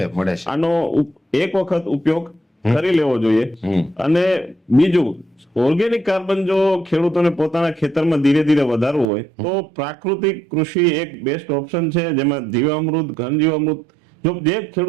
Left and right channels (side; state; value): left; drops out; at 9.1 s